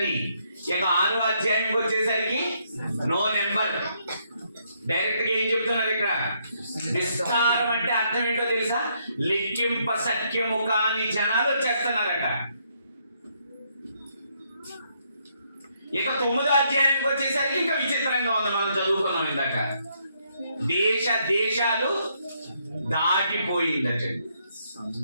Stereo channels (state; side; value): inverted; both; correlation -0.74